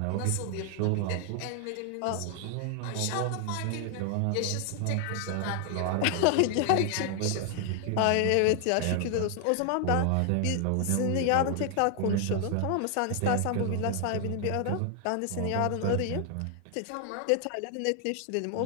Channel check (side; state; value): both; different; correlation 0.00